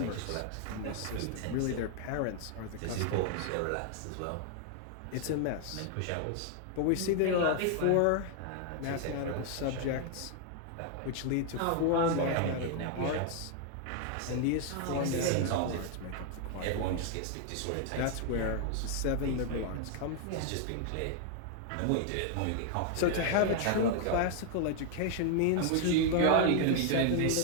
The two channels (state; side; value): different; both; correlation 0.00